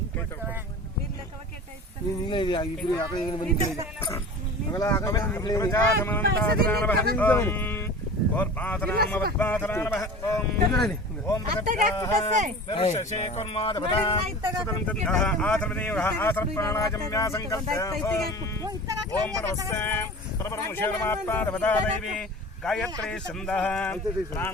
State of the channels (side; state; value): both; normal; correlation 0.37